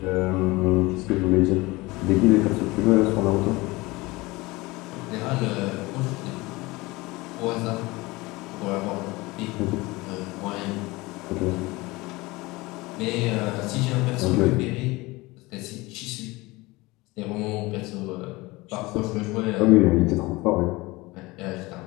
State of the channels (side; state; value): right; quieter; 22.1 dB